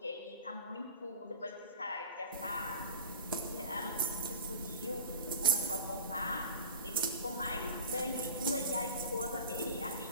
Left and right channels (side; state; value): both; inverted; correlation -0.35